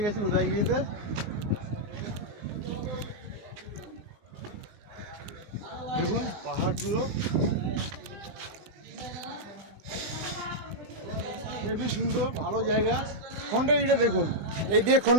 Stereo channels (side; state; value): left; late; 20 ms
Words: গেছি উদয়গিরিতে। দেখুন পাহাড়গুলো খুবই সুন্দর, ভালো জায়গা। খণ্ডগিরিটা দেখুন, এই দিয়ে